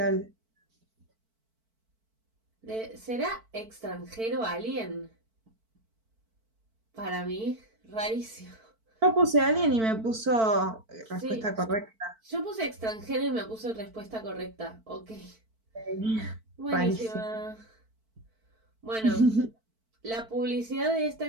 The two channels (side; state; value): left; late; 4.5 ms